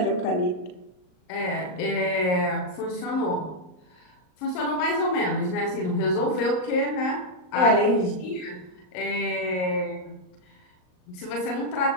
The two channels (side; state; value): right; late; 39 ms